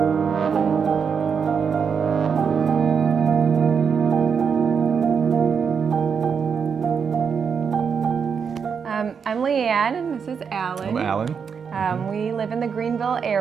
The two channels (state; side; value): quieter; left; 6.4 dB